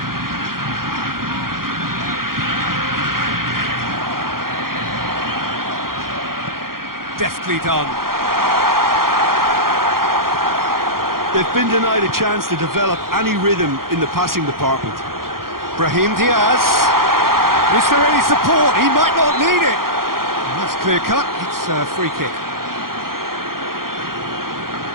Deftly done. They've been denied a chance to develop any rhythm in the passing department. Brahim Diaz. Is there any support? He might not need it. That's clear cut. It's a free kick.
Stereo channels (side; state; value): left; late; 0.92 ms